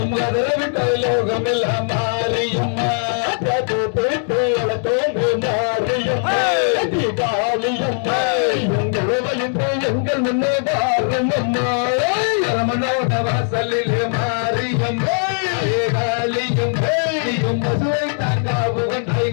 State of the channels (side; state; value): right; silent; 58 dB below the other